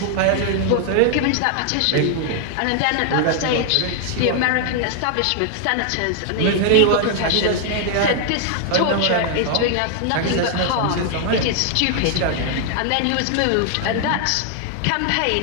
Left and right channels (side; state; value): both; different; correlation 0.00